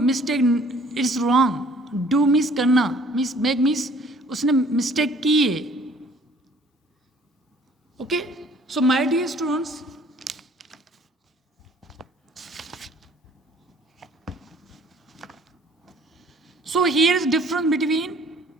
It's wrong. Do means करना, means make means उसने mistake की है. Okay, so my dear students, so here is difference between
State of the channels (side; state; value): both; normal; correlation 0.56